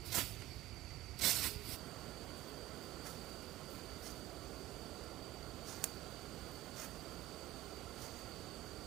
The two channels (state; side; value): quieter; left; 16.1 dB